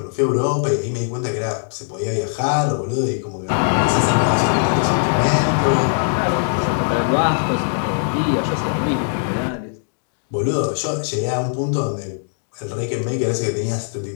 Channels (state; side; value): silent; right; digital silence